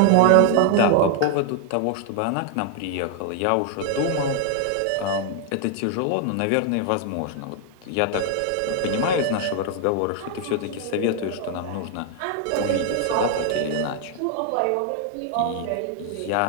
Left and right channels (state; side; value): different; both; correlation 0.00